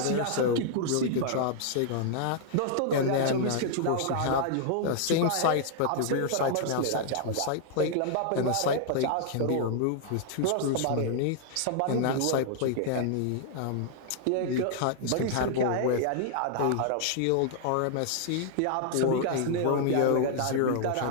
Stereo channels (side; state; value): both; different; correlation -0.01